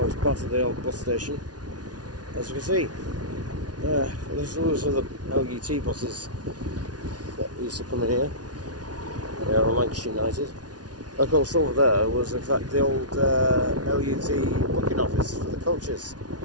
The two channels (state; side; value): late; left; 0.69 ms